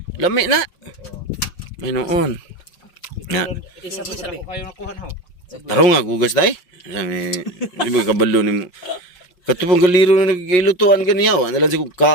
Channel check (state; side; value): late; right; 5.6 ms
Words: Lami na. May noon. Na. Isa po sabi. Kayo nakuha na ho. Taro nga, gugas day. Sabi, di ba kabalo ni mo. Katupang galiro na nagilutuan ganiyaw. Ano lang siya